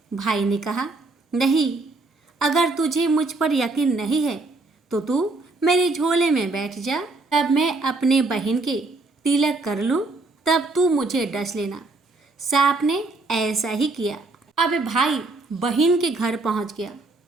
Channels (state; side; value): quieter; left; 3.3 dB